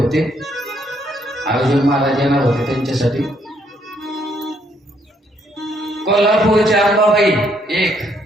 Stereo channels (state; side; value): normal; both; correlation 0.71